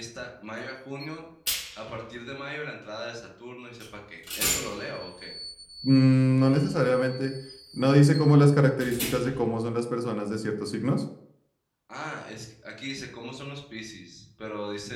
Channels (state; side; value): identical; both; correlation 1.00